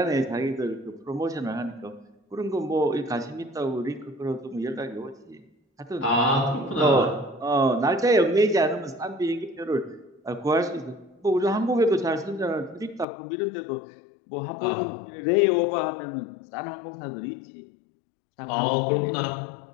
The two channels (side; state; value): right; drops out; at 13.1 s